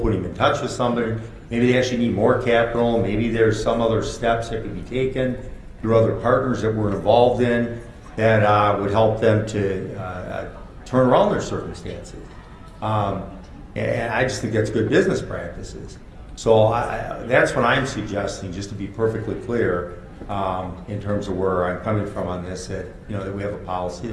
them in touch with somebody. Maybe they actually need more capital. Maybe there's some other steps that could be taken through other partners that we're involved in that would help them to turn around their circumstances. And I just think that's good business practices. So that's what I'm suggesting, just to be perfectly clear, in terms of where I'm coming from on this, that we have a policy,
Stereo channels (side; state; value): both; identical; correlation 1.00